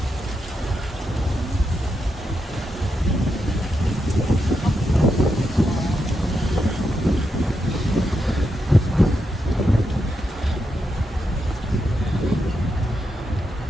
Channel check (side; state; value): both; normal; correlation 0.84